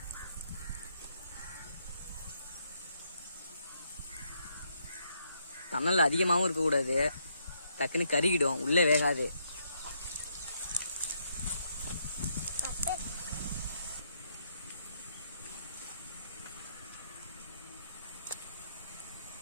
தணல் அதிகமாகவும் இருக்கக்கூடாது, டக்குன்னு கருகிடும், உள்ளே வேகாது.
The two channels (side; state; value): both; inverted; correlation -0.74